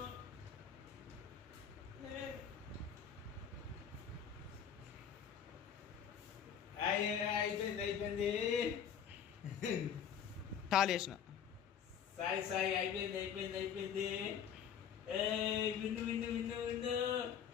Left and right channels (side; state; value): right; quieter; 8.2 dB